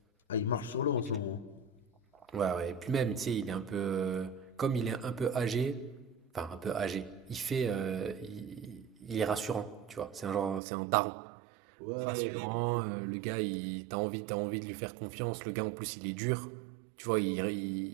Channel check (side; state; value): left; drops out; at 10.6 s